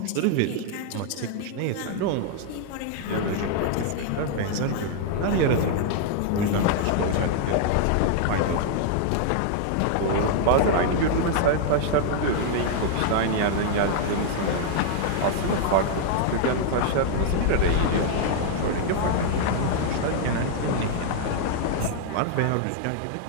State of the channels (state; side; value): different; both; correlation 0.00